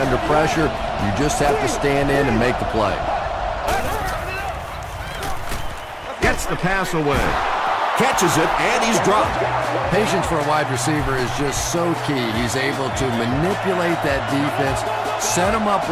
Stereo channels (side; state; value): both; identical; correlation 1.00